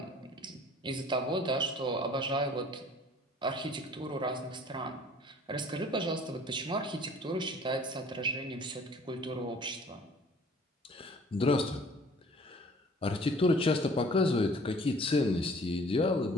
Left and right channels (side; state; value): both; normal; correlation 0.52